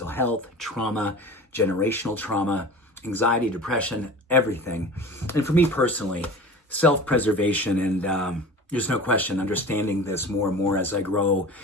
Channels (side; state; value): both; normal; correlation 0.37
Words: health, trauma, generational trauma, anxiety, depression, everything. And for me personally, self-preservation and there's no question understanding this more and more as I grow